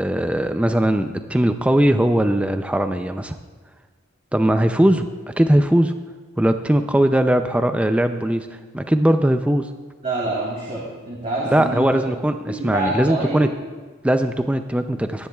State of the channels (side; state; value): both; normal; correlation 0.90